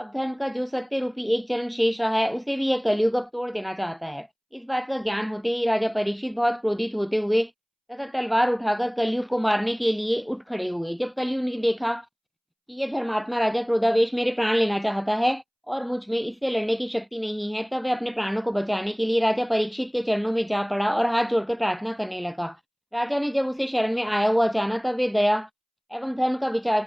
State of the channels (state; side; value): identical; both; correlation 1.00